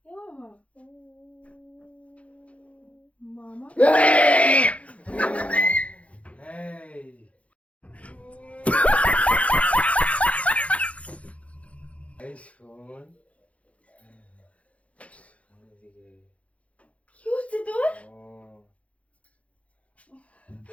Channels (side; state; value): right; late; 0.064 ms